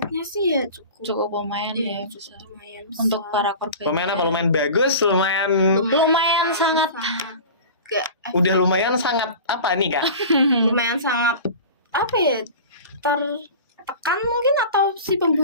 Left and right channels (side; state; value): both; inverted; correlation -0.36